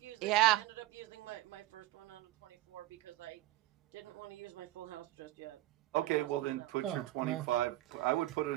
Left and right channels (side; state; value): left; quieter; 16.7 dB